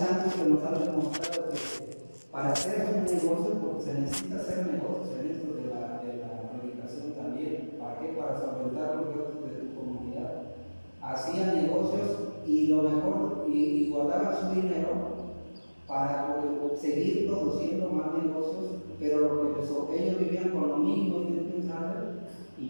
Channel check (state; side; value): inverted; both; correlation -1.00